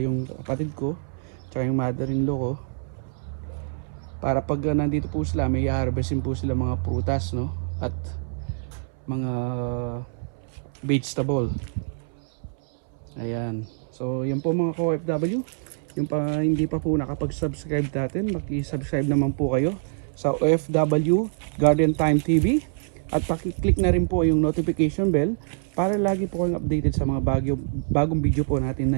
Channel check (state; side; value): silent; left; 62 dB below the other